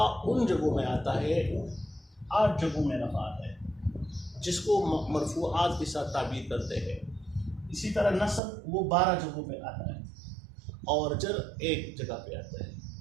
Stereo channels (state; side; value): drops out; left; at 8.4 s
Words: ان جگہوں میں آتا ہے، 8 جگہوں میں رفع آتا ہے، جس کو مرفوعات کے ساتھ تعبیر کرتے ہیں۔ اسی طرح نصب وہ 12 جگہوں پہ آتا ہے، اور جر 1 جگہ پہ آتا ہے۔